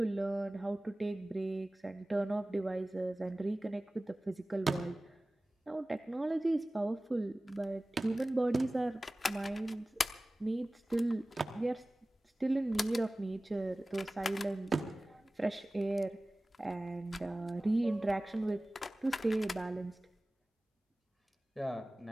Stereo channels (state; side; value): normal; both; correlation 0.97